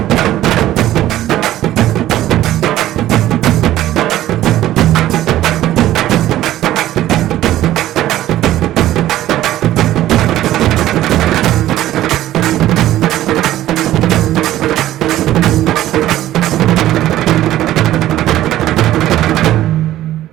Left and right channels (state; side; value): quieter; left; 14.0 dB